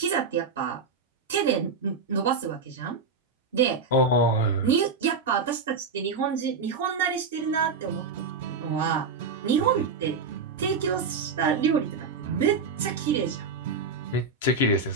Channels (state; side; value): quieter; left; 4.5 dB